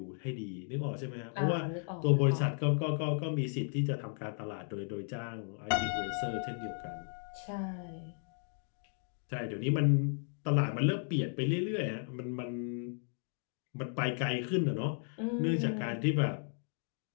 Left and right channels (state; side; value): silent; right; 54 dB below the other